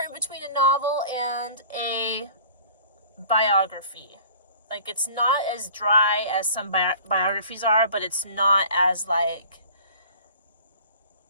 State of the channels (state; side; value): inverted; both; correlation -0.46